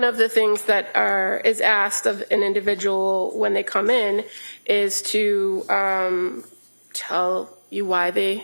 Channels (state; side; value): inverted; both; correlation -1.00